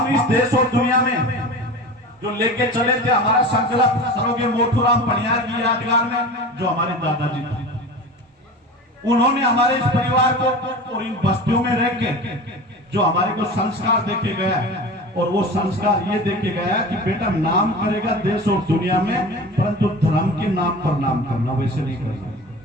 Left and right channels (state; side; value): normal; both; correlation 0.34